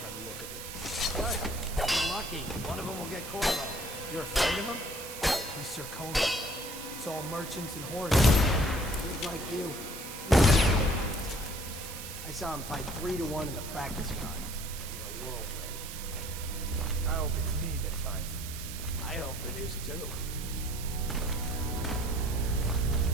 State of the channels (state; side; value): noise; right; hiss, 10 dB below the sound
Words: the look of it. Good. You're lucky. One of them will get Corvo. You're afraid of him? He's Sir Conan. It's all merchants and horses. Kids like you. I saw him fight 3-1 in the practice yard. He's a whirlwind. I hope it's me that finds him. I hope it is too.